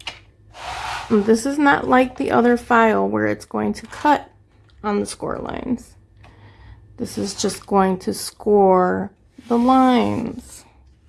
This is not like the other file where it's going to cut on the score lines. This is just going to score the lines.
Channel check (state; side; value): identical; both; correlation 1.00